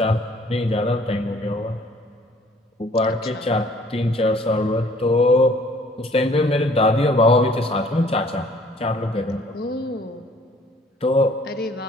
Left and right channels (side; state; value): both; normal; correlation 0.57